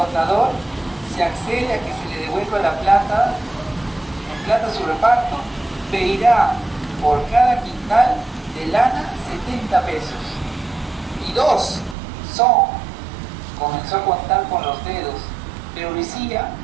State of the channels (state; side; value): drops out; left; at 12.0 s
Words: se accede a que se le devuelva la plata, en plata su reparto, pedirá por cada quintal de lana 70 pesos. Y 2 son. Comenzó a contar con los dedos, pero Lucía,